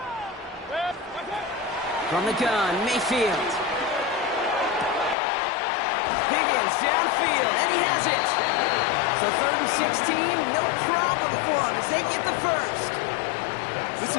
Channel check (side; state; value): right; drops out; at 5.2 s